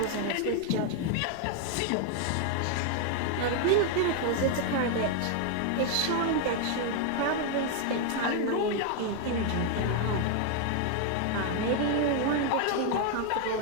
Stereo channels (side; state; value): both; different; correlation 0.00